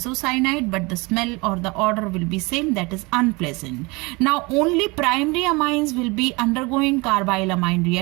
but the smell or the odor will be same, that is unpleasant. Now only primary amines will be undergoing carbyl amine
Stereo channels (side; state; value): left; quieter; 25.9 dB